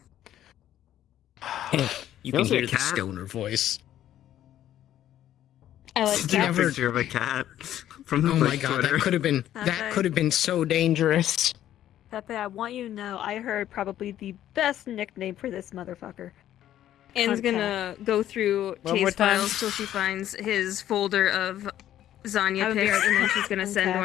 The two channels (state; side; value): quieter; right; 12.0 dB